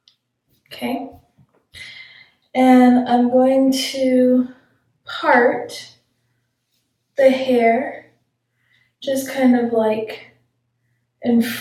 Okay. And I'm going to part the hair just kind of like in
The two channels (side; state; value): both; identical; correlation 1.00